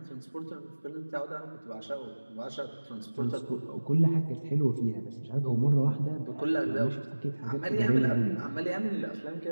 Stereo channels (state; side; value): inverted; both; correlation -1.00